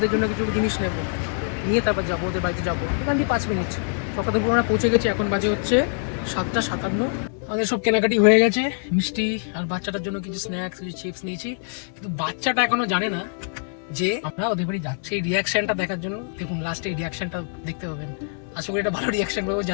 জন্য কিছু জিনিস নেব, নিয়ে তারপর যাবো ওদের বাড়িতে যাবো। এখান দিয়ে 5 মিনিট চক্রধরপুর আমরা পৌঁছে গেছি। এখন বাজে হচ্ছে 7:57। আমাদের সব কেনাকাটি হয়ে গেছে, মিষ্টি আর বাচ্চাটার জন্য কিছু স্ন্যাক্স, কিছু চিপস নিয়েছি। কিন্তু বাচ্চাটা এখনো জানে না যে আমরা ওদের বাড়ি যাচ্ছি। এই রিয়াকশনটা দেখার জন্য দেখুন, লাস্টে এই রিয়াকশনটা দেখতে পাবেন। আশা করি এটা ভালো রিয়াকশন পাবো,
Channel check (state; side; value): silent; right; 59 dB below the other